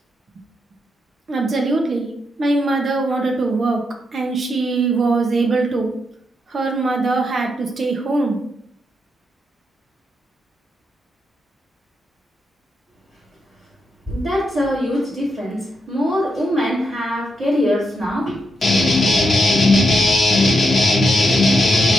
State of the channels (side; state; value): both; normal; correlation 0.82